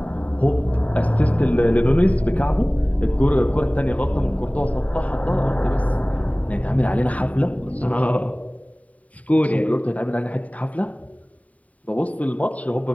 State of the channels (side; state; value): right; late; 0.069 ms